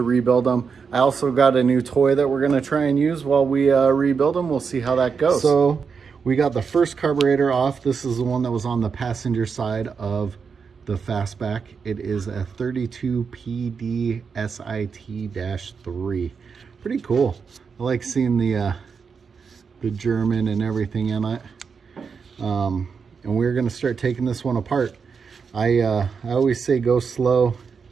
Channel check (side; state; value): left; quieter; 5.8 dB